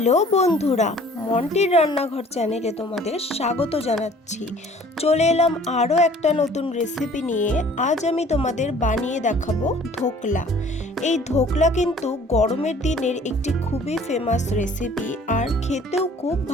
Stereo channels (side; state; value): both; normal; correlation 0.53